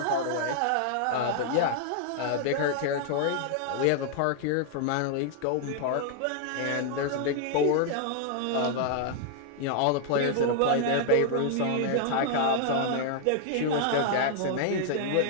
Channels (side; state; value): both; different; correlation -0.01